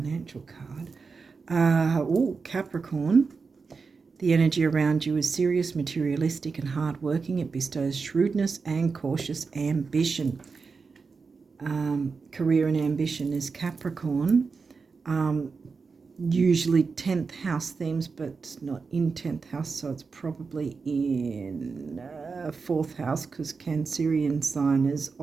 card. Capricorn. The energy around you is serious, materialistic, and hardworking. It bestows shrewdness and cautious ambition. Career and ambition is Capricorn. Usually 10th house themes, but not in 10th house, so it's probably in 4th house, because Cancerian sign is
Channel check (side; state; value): left; quieter; 4.8 dB